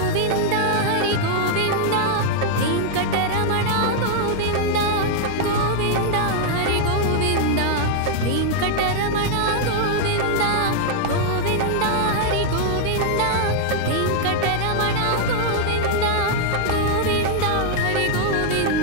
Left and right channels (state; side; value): different; both; correlation -0.01